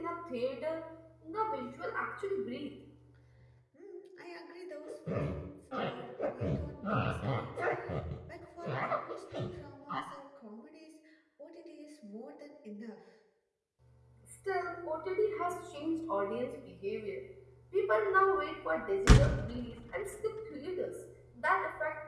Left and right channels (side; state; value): both; identical; correlation 1.00